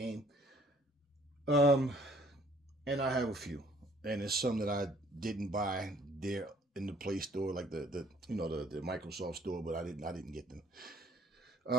And I have a few, and it's some that I didn't buy there in the Play Store, like the Microsoft Store, but I didn't get them.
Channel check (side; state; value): both; normal; correlation 0.59